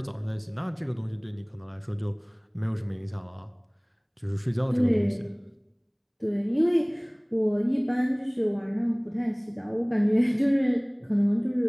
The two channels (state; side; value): identical; both; correlation 1.00